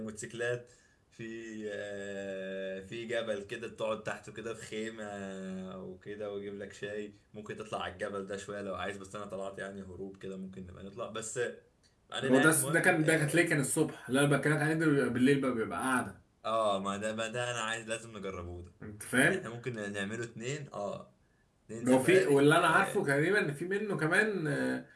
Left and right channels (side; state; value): both; identical; correlation 1.00